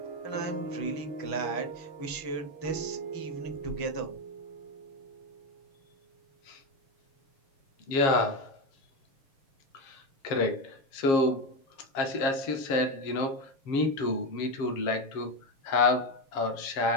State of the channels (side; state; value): right; late; 7.4 ms